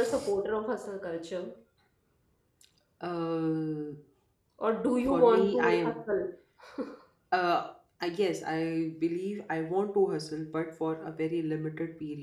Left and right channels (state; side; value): identical; both; correlation 1.00